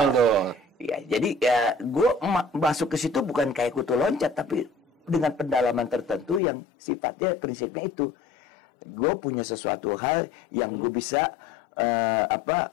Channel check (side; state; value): right; drops out; at 6.4 s